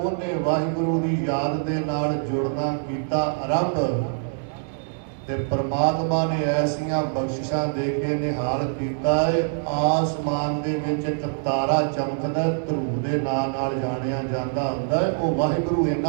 ਵਾਹਿਗੁਰੂ ਦੀ ਯਾਦ ਦੇ ਨਾਲ ਜੁੜਨਾ ਕੀਤਾ ਆਰੰਭ। ਤੇ ਪਰਮਾਤਮਾ ਨੇ ਐਸੀਆਂ ਬਖਸ਼ਿਸ਼ਾਂ ਦੇ ਕੇ ਨਿਹਾਲ ਕੀਤਾ ਹੈ। ਆਸਮਾਨ ਦੇ ਵਿੱਚ ਇੱਕ ਤਾਰਾ ਚਮਕਦਾ, ਧਰੂ ਦੇ ਨਾਂ ਨਾਲ ਜਾਣਿਆ ਜਾਂਦਾ ਹੁੰਦਾ ਹੈ। ਉਹ ਵਾਹਿਗੁਰੂ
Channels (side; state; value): left; silent; 62 dB below the other